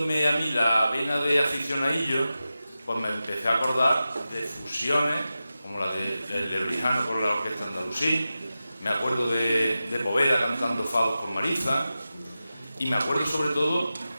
a mí la vena de aficionadillo, pues me empecé a acordar de fusiones, como la de Rijano con la Orquesta Andalusí, me acuerdo de Poveda cantando fados con Mariza, y me acuerdo sobre todo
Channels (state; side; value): inverted; both; correlation -0.93